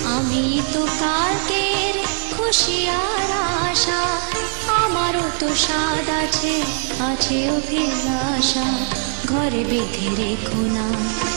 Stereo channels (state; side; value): silent; left; 57 dB below the other